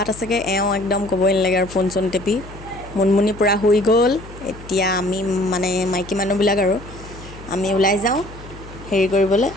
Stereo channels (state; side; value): noise; left; hum, 16 dB below the sound